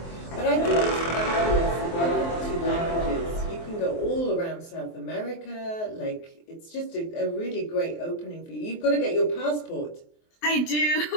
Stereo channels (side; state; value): right; late; 23 ms